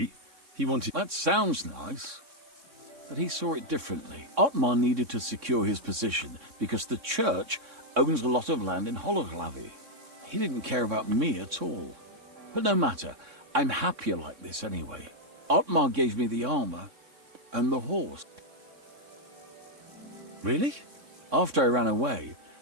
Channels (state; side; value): late; left; 3.6 ms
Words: he wanted... That sounds nice. But he saw it differently. Otmar needed to secure his position because the church owns a lot of land in Hologlavi. He didn't care about me at all. But no matter, I'm happier like this anyway. Otmar gave me the armor and the horse. Really? After I ran away,